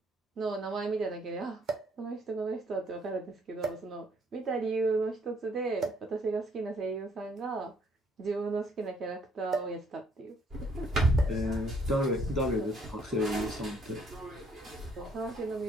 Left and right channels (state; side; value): normal; both; correlation 0.66